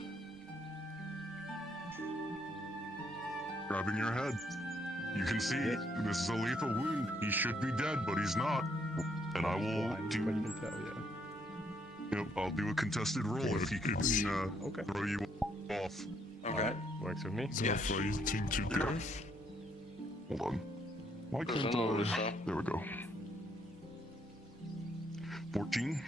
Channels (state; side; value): normal; both; correlation 0.71